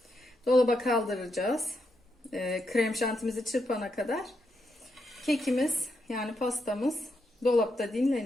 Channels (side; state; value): both; normal; correlation 0.82